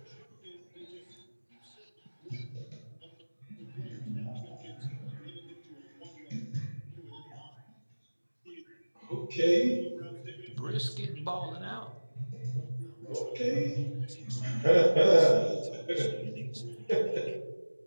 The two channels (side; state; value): both; inverted; correlation -1.00